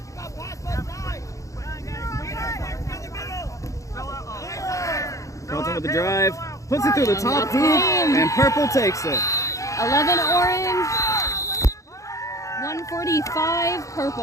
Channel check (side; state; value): right; late; 0.15 ms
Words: Carlton with the drive, puts it through the top hoop, and Purple takes it. 11 orange, 145